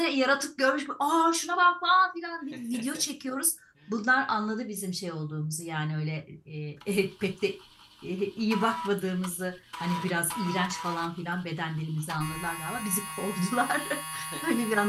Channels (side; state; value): both; identical; correlation 1.00